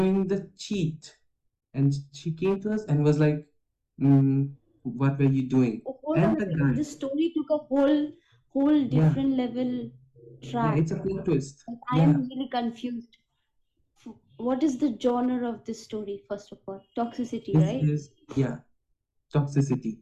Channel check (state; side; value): identical; both; correlation 1.00